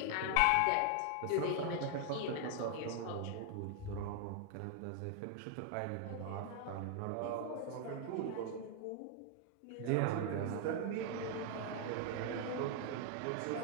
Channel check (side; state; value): both; different; correlation 0.00